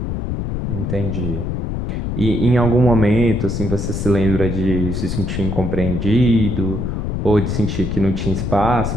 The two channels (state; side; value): noise; left; rumble, 2 dB below the sound